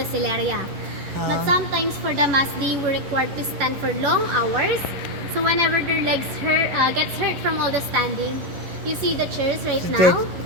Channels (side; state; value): left; late; 11 ms